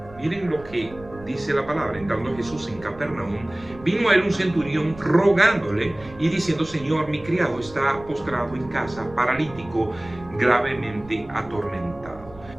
Miren lo que dice la palabra. Entrando Jesús en Capernaum, vino a él un centurión rogándole y diciendo: Señor, mi criado está postrado en casa, paralítico, gravemente atormentado.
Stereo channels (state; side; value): noise; right; rumble, 19 dB below the sound